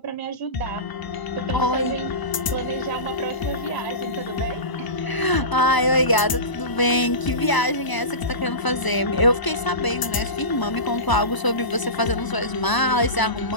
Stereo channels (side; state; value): right; late; 1.0 ms